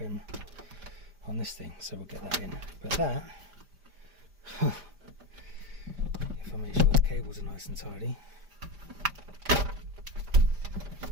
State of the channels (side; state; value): left; late; 5.0 ms